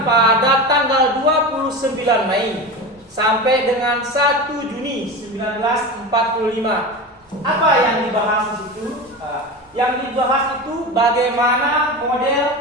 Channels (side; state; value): both; normal; correlation 0.26